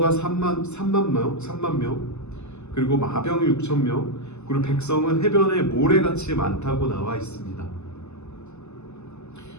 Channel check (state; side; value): late; right; 0.82 ms